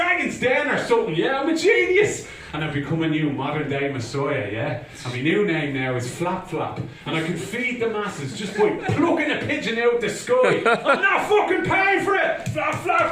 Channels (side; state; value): both; identical; correlation 1.00